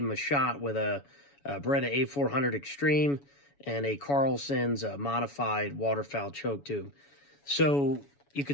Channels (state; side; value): late; right; 7.1 ms